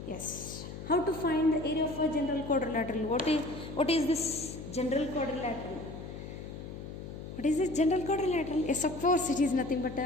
Yes. How to find the area of a general quadrilateral? What is this general quadrilateral? What is this general quadrilateral? Yes, of course, it is nothing but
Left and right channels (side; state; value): left; noise; hum, 10 dB below the sound